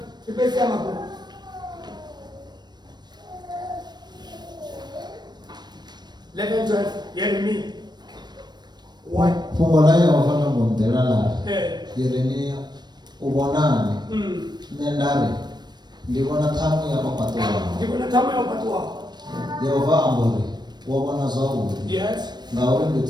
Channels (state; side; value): late; left; 0.21 ms